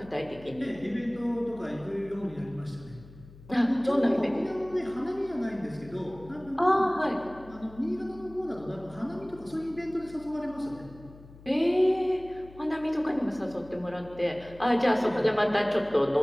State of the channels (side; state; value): left; noise; hum, 20 dB below the sound